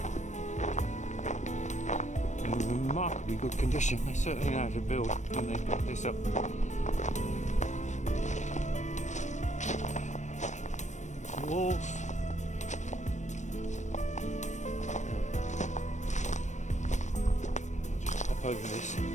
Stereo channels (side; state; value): right; late; 0.34 ms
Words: In remarkably good condition. They certainly know how to build when they put this up. Walls. Just hop over this.